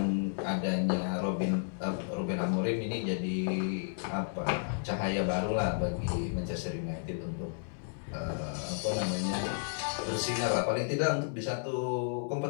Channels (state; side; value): silent; right; digital silence